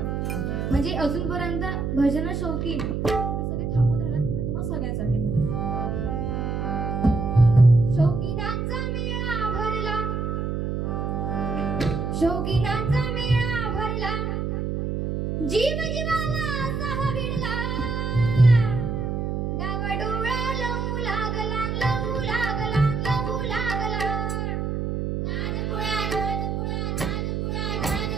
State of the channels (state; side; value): noise; right; hum, 1 dB below the sound